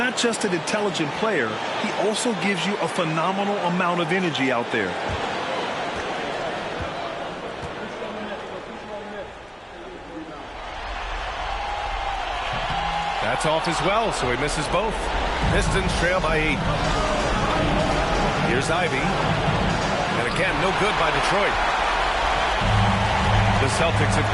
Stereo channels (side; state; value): both; identical; correlation 1.00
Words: just an intelligent player, he also gives you a phenomenal amount of energy out there. That's off as well, so he misses both. Pistons trail by 8. Here's Ivy. And again, no good by Detroit. The Celtics have